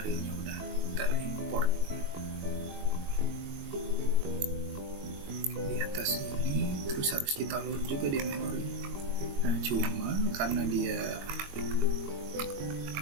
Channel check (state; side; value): late; left; 22 ms